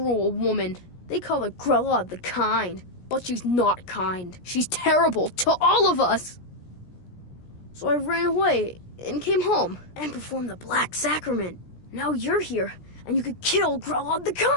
woman. They call her Grelod the Kind, but she's not kind. She's terrible to all of us. So I ran away and came home and performed the Black Sacrament. Now you're here, and you could kill Grelod the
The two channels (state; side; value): late; right; 17 ms